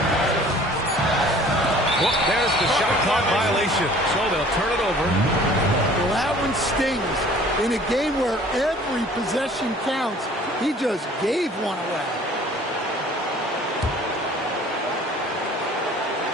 Well, there's the shot clock violation. So they'll turn it over. Well, that one stings. In a game where every possession counts, he just gave one away.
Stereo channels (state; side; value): normal; both; correlation 0.51